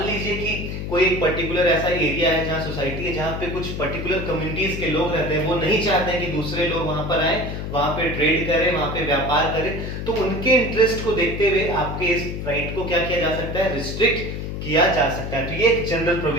लीजिए कि कोई एक पर्टिकुलर ऐसा एरिया है जहां सोसाइटी है, जहां पे कुछ पर्टिकुलर कम्युनिटीज के लोग रहते हैं, वो नहीं चाहते हैं कि दूसरे लोग वहां पर आए, वहां पे ट्रेड करें, वहां पे व्यापार करें। तो उनके इंटरेस्ट को देखते हुए आपके इस राइट को क्या किया जा सकता है? रिस्ट्रिक्ट किया जा सकता है। तो ये एक जनरल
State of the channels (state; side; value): noise; left; hum, 5 dB below the sound